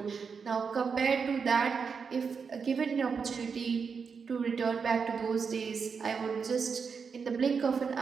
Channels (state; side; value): quieter; left; 5.8 dB